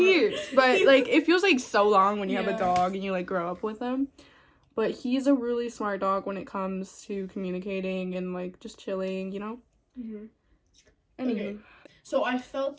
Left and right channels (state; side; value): identical; both; correlation 1.00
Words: But, like, it feels like so long when you have a dog and you, like, grow up with him. But he's a really smart dog when it comes to communicating and, like, just chilling, you know? Mm-hmm. Anyway. Okay. So I